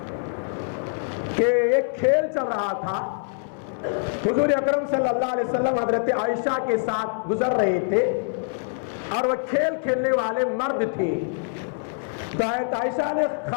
کہ ایک کھیل چل رہا تھا, حضور اکرم صلی اللہ علیہ وسلم حضرت عائشہ کے ساتھ گزر رہے تھے اور وہ کھیل کھیلنے والے مرد تھے. تو حضرت عائشہ نے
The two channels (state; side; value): silent; right; 62 dB below the other